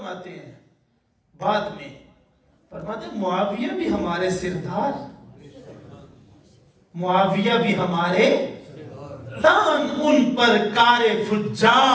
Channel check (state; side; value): identical; both; correlation 1.00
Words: ہیں بعد میں؟ فرماتے ہیں معاویہ بھی ہمارے سردار، معاویہ بھی ہمارے دان، ان پر کار